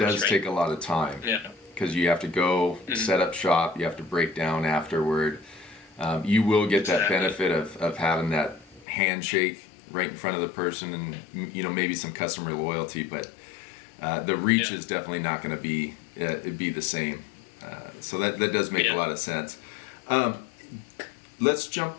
does take a lot of time. Yeah. Because you have to go set up shop, you have to break down afterward. You will get that benefit of having that handshake right in front of the person, and maybe some customer loyalty, but the reach is definitely not going to be the same. So that does make a lot of sense. Let's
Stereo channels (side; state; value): right; drops out; at 8.8 s